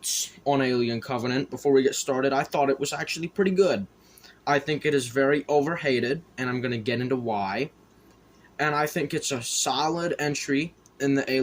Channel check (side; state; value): both; identical; correlation 1.00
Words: on Alien Covenant, before we get started, I thought it was actually pretty good. I think it is very overhated, and I'm going to get into why. And I think it's a solid entry in the